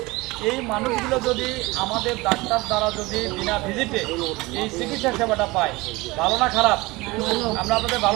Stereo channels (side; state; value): left; quieter; 22.1 dB